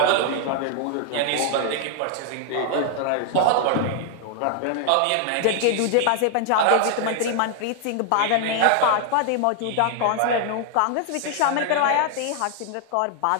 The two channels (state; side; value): different; both; correlation 0.00